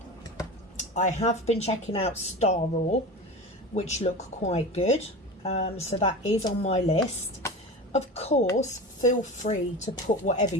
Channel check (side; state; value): both; normal; correlation 0.30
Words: I have been checking out Star Raw, which look quite good. So that is on my list. Of course, feel free to put whatever